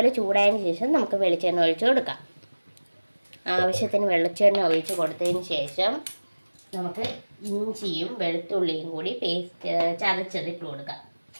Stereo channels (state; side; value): inverted; both; correlation -1.00